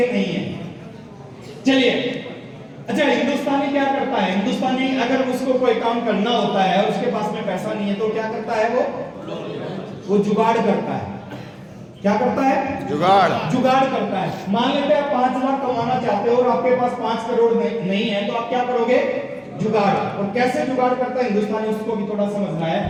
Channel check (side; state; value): both; identical; correlation 1.00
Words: नहीं है। चलिए, अच्छा, हिंदुस्तानी क्या करता है? हिंदुस्तानी अगर उसको कोई काम करना होता है और उसके पास में पैसा नहीं है, तो क्या करता है? वो जुगाड़ करता है। क्या करता है? जुगाड़ करता है। मान लेते हैं 5 लाख कमाना चाहते हो और आपके पास 5 करोड़ नहीं है, तो आप क्या करोगे? जुगाड़। और कैसे जुगाड़ करता है हिंदुस्तानी, उसको भी थोड़ा समझना है।